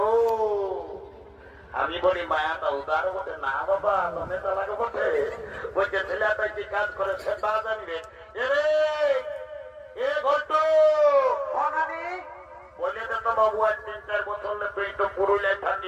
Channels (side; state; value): both; identical; correlation 1.00